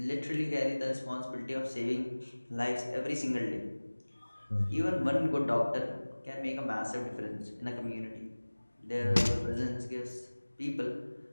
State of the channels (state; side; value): inverted; both; correlation -1.00